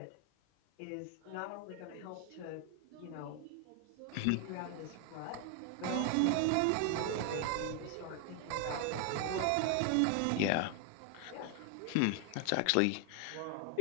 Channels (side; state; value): both; different; correlation 0.01